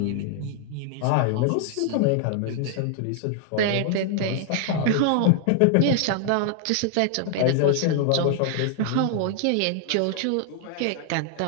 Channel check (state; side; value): different; both; correlation 0.00